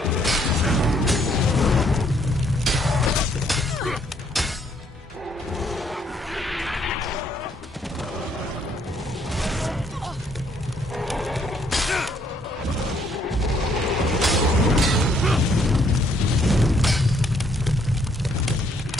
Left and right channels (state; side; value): normal; both; correlation 0.68